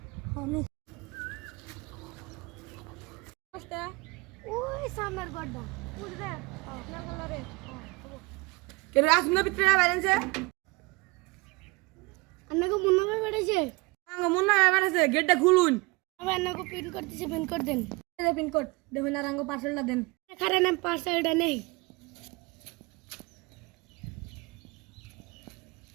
ওই সামনের গড্ডা বুঝবে না কালারে কে রে আসুন না ভিতরে বাইরেছে আপনাকে মুন্না ভাই বেড়েছে আঙ্গ মুন্না বাইরেছে গেটটা খুলুন আমি আপনাকে পিন করতেছি পিন করে দেন পিন কোড দেখুন আর আঙ্গ পার্সেলটা দেন কারণ আমি পার্সেলটা নেই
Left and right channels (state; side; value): quieter; left; 25.4 dB